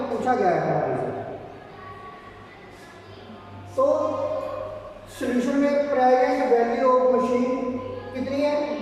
पूछा गया है हमारे से। तो सोल्यूशन में प्रेजेंट वैल्यू ऑफ मशीन कितनी है?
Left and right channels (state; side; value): identical; both; correlation 1.00